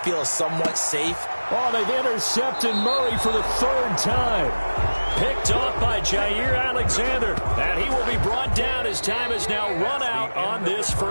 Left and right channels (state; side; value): inverted; both; correlation -1.00